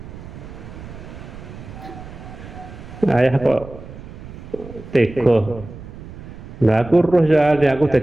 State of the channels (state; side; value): noise; right; rumble, 14 dB below the sound